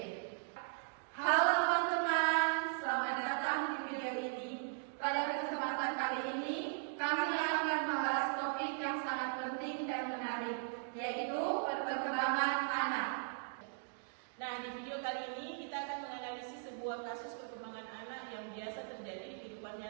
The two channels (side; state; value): left; silent; digital silence